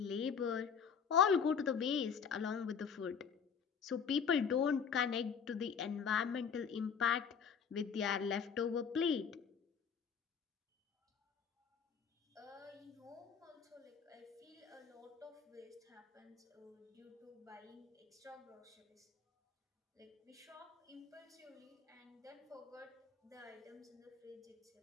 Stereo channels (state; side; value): quieter; right; 6.8 dB